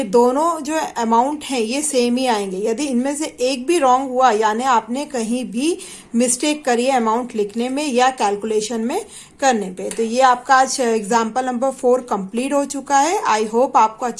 दोनों जो अमाउंट हैं ये सेम ही आएंगे। यदि इनमें से एक भी रॉन्ग हुआ, यानी आपने कहीं भी मिस्टेक करी है अमाउंट लिखने में या कैलकुलेशन में करने पे, तो ये आपका आज एग्जाम्पल नंबर 4 कंप्लीट हो चुका है। आई होप आपको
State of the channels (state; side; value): identical; both; correlation 1.00